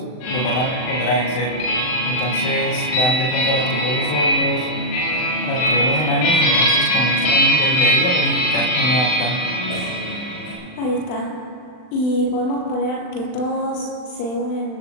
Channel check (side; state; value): right; late; 39 ms